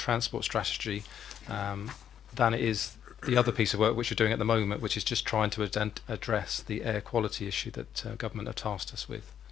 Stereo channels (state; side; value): quieter; right; 9.3 dB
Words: strategy than it is the other piece of work which we're doing at the moment, which is just trying to address the air quality issue that government have tasked us with.